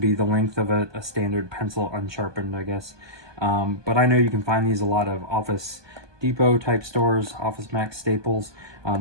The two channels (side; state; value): left; late; 1.2 ms